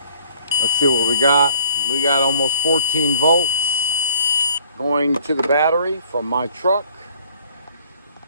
let's see what we got. We got almost 14 volts going to the battery from my truck.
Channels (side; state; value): both; inverted; correlation -0.56